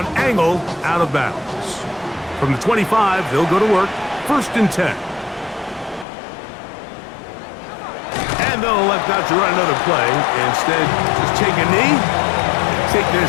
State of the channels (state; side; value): drops out; right; at 6.1 s